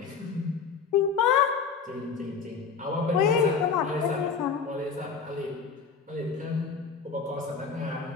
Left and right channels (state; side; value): quieter; right; 5.7 dB